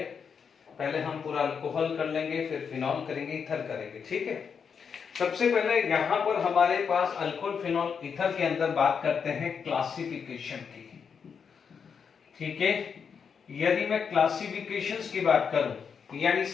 पहले हम पूरा अल्कोहल कर लेंगे, फिर फिनॉल करेंगे, ईथर करेंगे। ठीक है, सबसे पहले यहाँ पर हमारे पास अल्कोहल, फिनॉल, ईथर के अंदर बात करते हैं क्लासिफिकेशन की। ठीक है, यदि मैं क्लासिफिकेशंस की बात करूं, यानी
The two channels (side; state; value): right; quieter; 6.5 dB